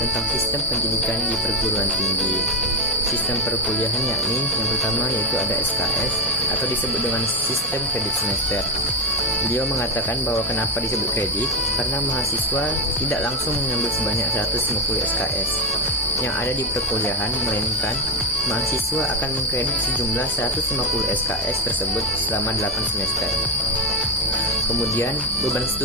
tentang sistem pendidikan di perguruan tinggi. Sistem perkuliahan yakni yang pertama yaitu ada SKS atau disebut dengan sistem kredit semester. Beliau mengatakan bahwa kenapa disebut kredit, karena mahasiswa tidak langsung mengambil sebanyak 150 SKS yang ada di perkuliahan, melainkan mahasiswa akan mengkredit sejumlah 150 SKS tersebut selama 8 semester. Kemudian, beban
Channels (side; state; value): both; normal; correlation 0.08